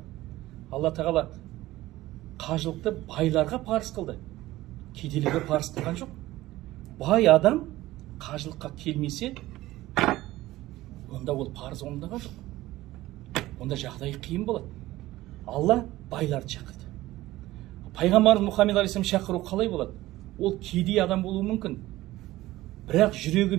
Алла тағала қажылықты байларға парыз қылды. Кедейлерге парыз қылған жоқ. Бай адам қажылыққа келмесе, онда ол парыз орындаған жоқ. Онда жағдайы қиын болады. Алла байларды шақырды. Пайғамбарымыз Мұхаммед алейхиссалам шақыру қалай болады? Ол кедей адам болуы мүмкін. Бірақ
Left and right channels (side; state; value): left; quieter; 16.8 dB